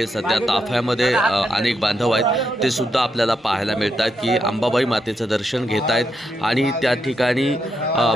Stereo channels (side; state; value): both; normal; correlation 0.82